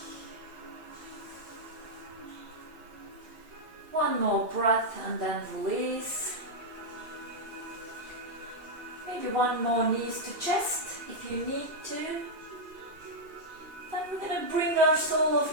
One more breath and then release. Maybe one more knees to chest if you need to. Then we're going to bring our sole of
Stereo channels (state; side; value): late; left; 2.9 ms